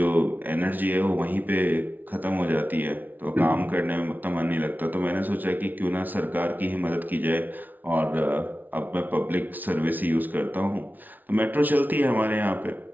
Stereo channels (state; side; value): late; left; 0.082 ms